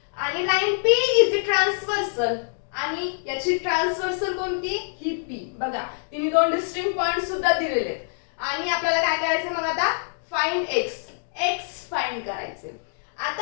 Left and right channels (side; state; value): right; silent; digital silence